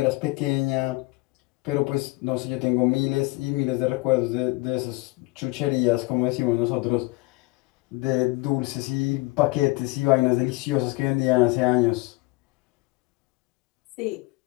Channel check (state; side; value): quieter; right; 23.4 dB